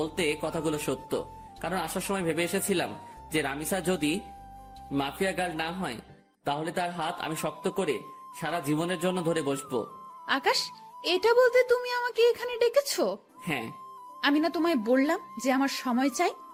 কথাগুলো সত্য, কারণ আসার সময় ভেবে এসেছিলাম যে রামিসা যদি মাফিয়া গার্ল না হয় তাহলে তার হাত আমি শক্ত করে সারা জীবনের জন্য ধরে বসবো। আকাশ, এটা বলতে তুমি আমাকে এখানে ডেকেছো? হ্যাঁ, আমি না তোমায় বললাম যে আমার সময় চাই?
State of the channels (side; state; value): both; identical; correlation 1.00